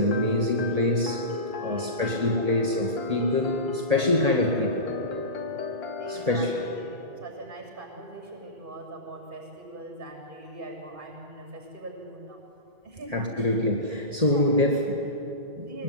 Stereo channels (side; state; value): left; late; 1.8 ms